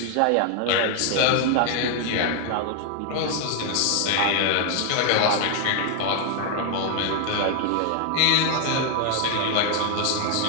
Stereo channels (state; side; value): different; both; correlation 0.00